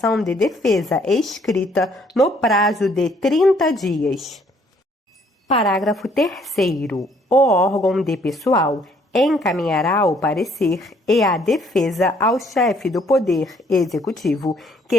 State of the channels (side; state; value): both; normal; correlation 0.64